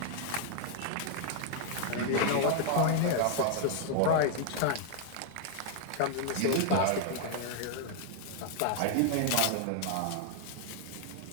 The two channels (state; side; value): different; both; correlation 0.00